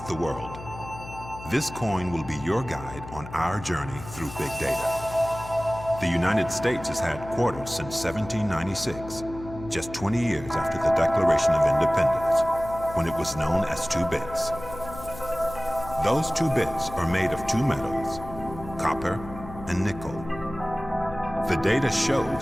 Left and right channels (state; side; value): noise; left; hum, 13 dB below the sound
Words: the world. This coin will be your guide on our journey through big data. The United States has had quarters since 1796, just 20 years after the Declaration of Independence, when it was known as 2 bits. Those 2 bits are made of 2 metals, copper and nickel. The data